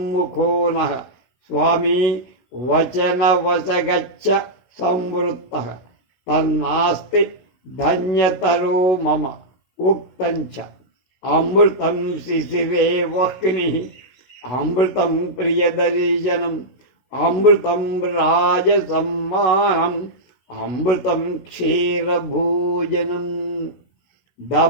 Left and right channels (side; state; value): right; late; 17 ms